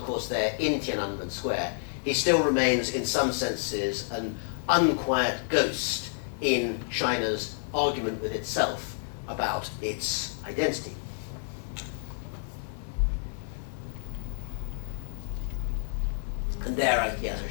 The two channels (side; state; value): right; silent; digital silence